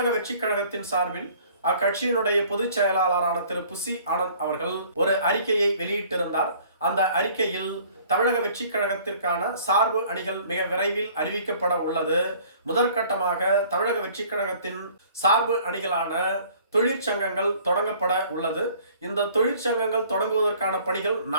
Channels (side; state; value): both; inverted; correlation -0.54